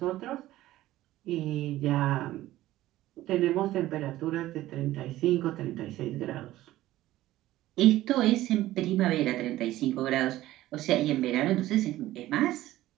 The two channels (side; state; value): left; quieter; 15.5 dB